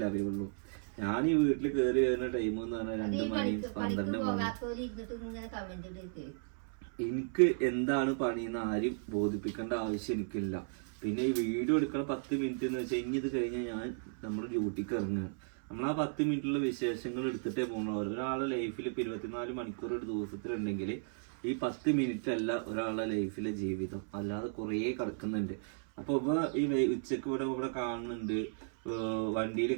അറിയുള്ളൂ. ഞാൻ ഈ വീട്ടിൽ കയറി വരുന്ന ടൈം എന്ന് പറഞ്ഞാൽ 2 മണി 12 മണി. എനിക്ക് എന്താണ് പണിയെന്ന് ആരും ബോധിപ്പിക്കേണ്ട ആവശ്യം എനിക്കില്ല. പിന്നെ ഈ വീഡിയോ എടുക്കണ 10 മിനിറ്റ് എന്ന് വെച്ചാൽ ഇനി ഇത് കഴിഞ്ഞാൽ ഞാൻ നമ്മുടെ ഡ്യൂട്ടിക്ക് ഇറങ്ങുകയാണ്. നമ്മൾ ആ 10 മിനിറ്റുള്ള വിശേഷങ്ങൾ എടുത്തിട്ടേ പോകണം. ഒരാളുടെ ലൈഫിൽ ഇപ്പൊ 24 മണിക്കൂർ ഒരു ദിവസത്തിലുണ്ടെങ്കിൽ ഈ 10 മിനിറ്റ് അല്ല ഒരാളുടെ ലൈഫിലെ ജീവിതം, അല്ലാതെ കുറേ കിടക്കുന്നുണ്ട്. അപ്പൊ ഈ ഉച്ചക്ക് ഇവിടെ കാണുന്നുണ്ട്, വണ്ടിയിൽ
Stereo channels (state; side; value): silent; left; 55 dB below the other